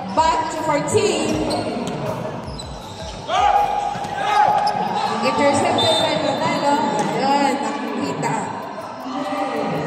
Back to 14. Intercepted by Manalo. Ayan, nakikita.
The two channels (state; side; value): identical; both; correlation 1.00